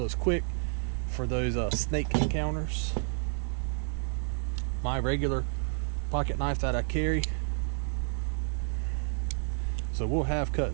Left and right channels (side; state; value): left; silent; 58 dB below the other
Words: it's quick for those snake encounters. My regular pocket knife that I carry. So we'll have